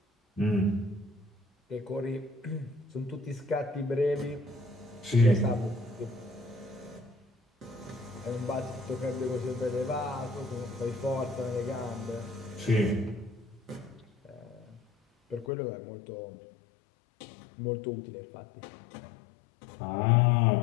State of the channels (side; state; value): right; drops out; at 15.5 s